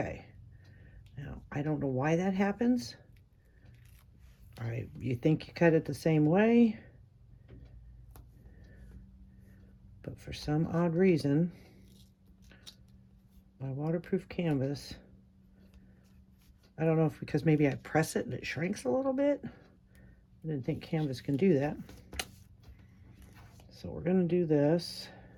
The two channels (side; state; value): both; identical; correlation 1.00